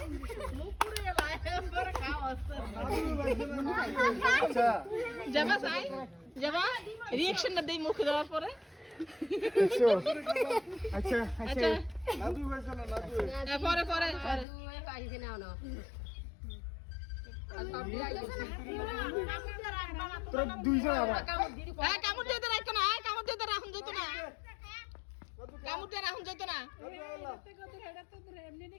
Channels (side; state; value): right; drops out; at 14.5 s